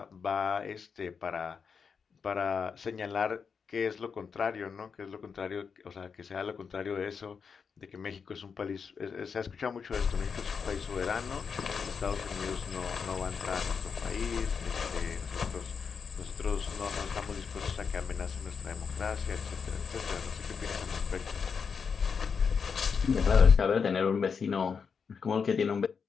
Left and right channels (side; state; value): right; quieter; 6.0 dB